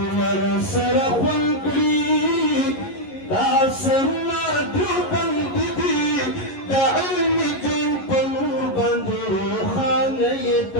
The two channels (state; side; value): late; right; 11 ms